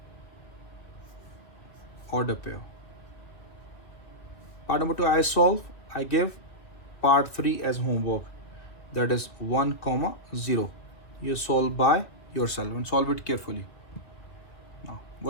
order pair. Part number 2 I solve. I give part 3 as homework. that is 1 comma 0. You solve by yourself and solve it carefully. Now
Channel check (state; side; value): late; right; 2.5 ms